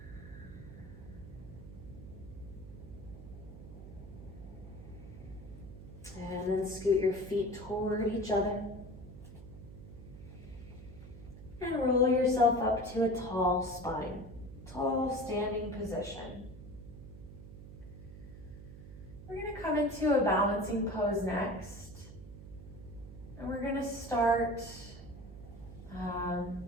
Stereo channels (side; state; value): right; noise; hum, 14 dB below the sound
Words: And then scoot your feet toward each other. And roll yourself up to a tall spine, tall standing position. We're going to come into a balancing pose next. And we're going to start